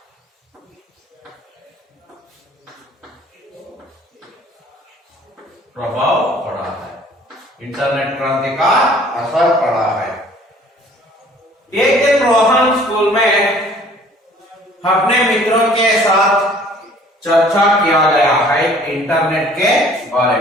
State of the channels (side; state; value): both; normal; correlation 0.54